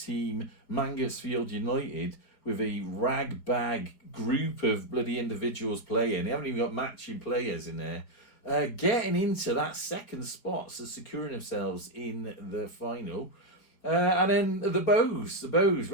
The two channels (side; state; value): right; late; 4.4 ms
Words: Mansfield United, with a rag-bag group of bloody individuals playing. They haven't even got matching players in there. Getting into that second spot, so securing themselves in the final. And then the Bows,